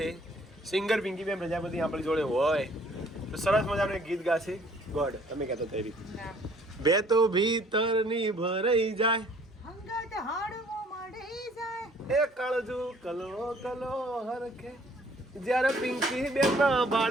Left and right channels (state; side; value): normal; both; correlation 0.59